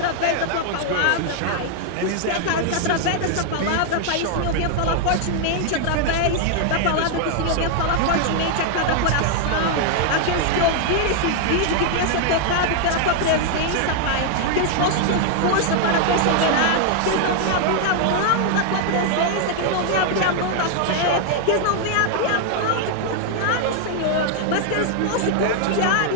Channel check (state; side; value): different; both; correlation 0.00